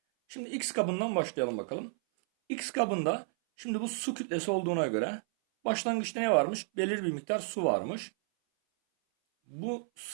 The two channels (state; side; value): silent; left; 57 dB below the other